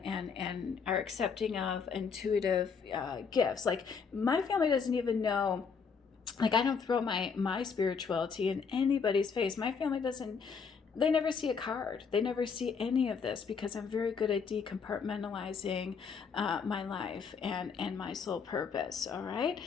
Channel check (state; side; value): quieter; right; 5.8 dB